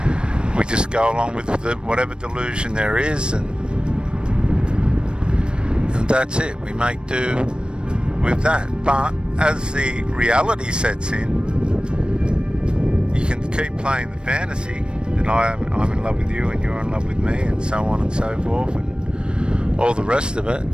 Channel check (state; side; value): late; left; 0.054 ms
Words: We just go along with whatever delusion there is, and that's it. We make do with that. But as the reality sets in, you can keep playing the fantasy that I'm in love with you and you're in love with me, and so on and so forth, and all the rest of it,